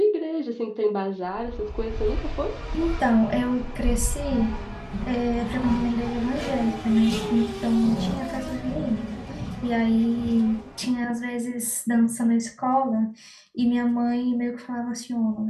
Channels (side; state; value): both; identical; correlation 1.00